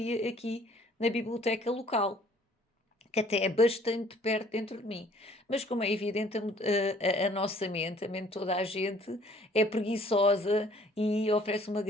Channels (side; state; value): both; normal; correlation 0.57